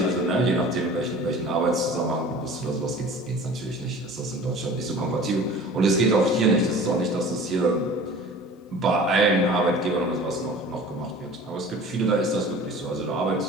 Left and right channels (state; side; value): normal; both; correlation 0.43